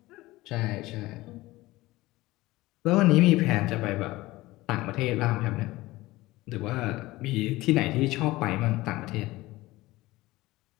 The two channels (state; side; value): quieter; right; 18.9 dB